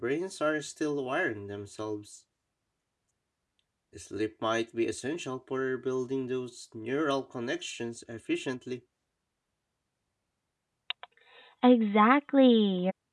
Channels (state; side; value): identical; both; correlation 1.00